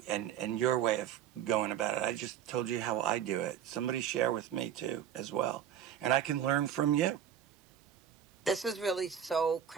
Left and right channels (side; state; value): left; quieter; 9.6 dB